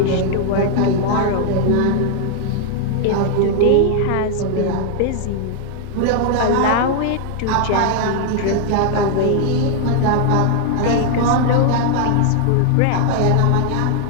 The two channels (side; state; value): both; different; correlation 0.00